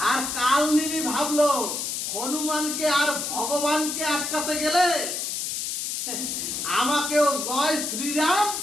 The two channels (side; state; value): left; noise; hiss, 3 dB below the sound